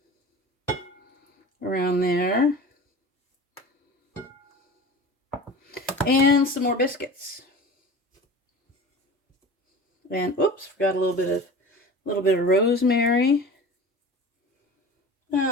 Around there. And some more biscuits. And oops, forgot a little bit of rosemary.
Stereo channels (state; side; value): normal; both; correlation 0.37